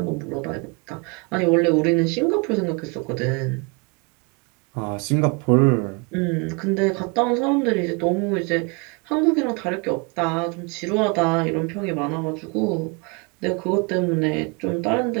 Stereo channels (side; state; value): left; quieter; 31.3 dB